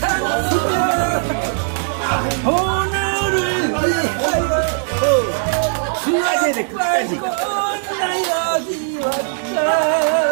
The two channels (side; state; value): left; silent; digital silence